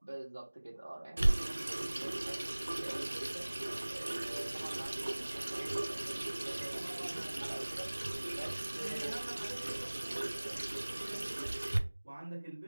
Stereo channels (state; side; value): inverted; both; correlation -1.00